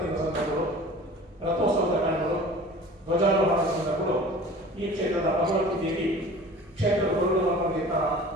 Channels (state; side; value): normal; both; correlation 0.43